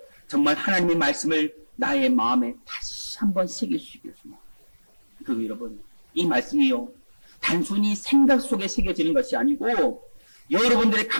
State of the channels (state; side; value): inverted; both; correlation -1.00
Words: 정말 하나님의 말씀을 나의 마음에 다시 한번 새길 수 있기를 소망합니다. 그리고 여러분, 이 말씀이요, 단순히 생각 속에 새겨지는 것이 아니고 여러분들의